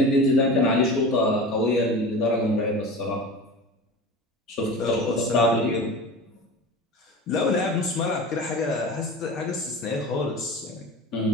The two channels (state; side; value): normal; both; correlation 0.33